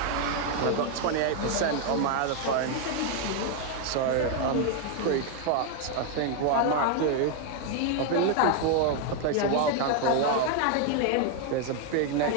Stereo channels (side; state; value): both; different; correlation 0.00